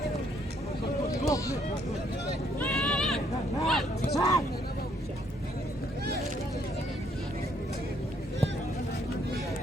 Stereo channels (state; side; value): normal; both; correlation 0.68